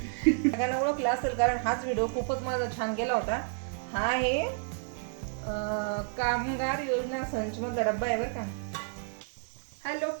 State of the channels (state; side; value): silent; left; digital silence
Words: सगळ्यांना ओळखलं असेल कारण हाच व्हिडिओ खूपच माझा छान गेला होता. हा आहे कामगार योजना संच मधला डब्बा आहे बरं का. हॅलो